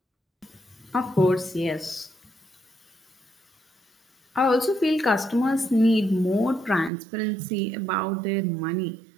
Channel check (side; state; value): left; drops out; at 6.9 s